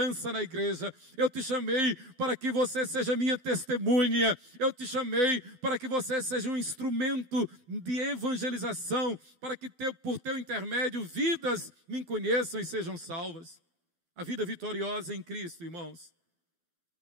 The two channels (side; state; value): left; late; 12 ms